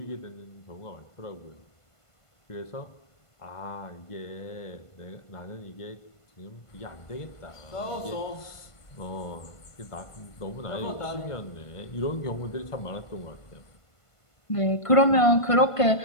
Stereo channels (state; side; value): late; right; 1.5 ms